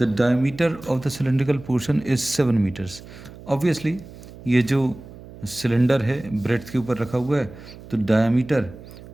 diameter of the cylindrical portion is 7 meters. Obviously ये जो cylinder है breadth के ऊपर रखा हुआ है, तो diameter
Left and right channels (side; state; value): right; noise; hum, 17 dB below the sound